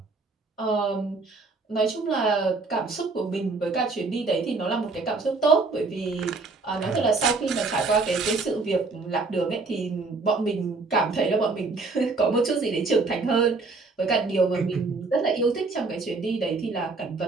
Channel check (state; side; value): quieter; left; 3.8 dB